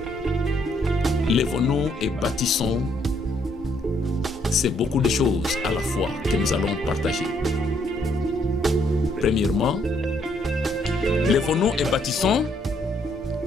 Lèvons-nous et bâtissons, c'est beaucoup de choses à la fois que nous allons partager. Premièrement, lèvons-nous et bâtissons,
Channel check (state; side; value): normal; both; correlation 0.70